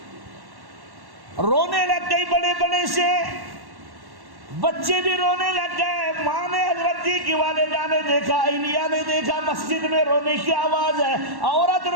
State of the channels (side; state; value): left; late; 1.1 ms